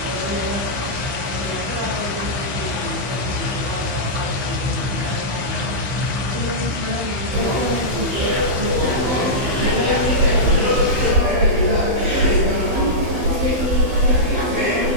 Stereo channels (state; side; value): late; left; 15 ms